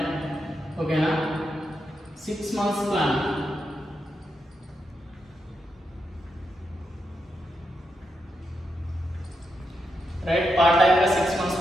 ఓకేనా? 6 months plan. Right, part time గా 6 months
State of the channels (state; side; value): normal; both; correlation 0.84